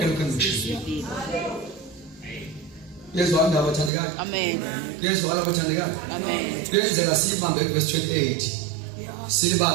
lokho engikushilo. Yezwa indaba bathandekayo. Amen. Yezwa abathandekayo. Amen. Kuyenzeka sibambe verse 28.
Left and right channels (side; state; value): left; drops out; at 3.9 s